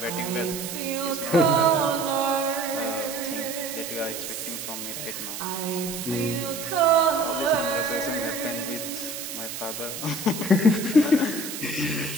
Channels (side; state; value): right; noise; hiss, 7 dB below the sound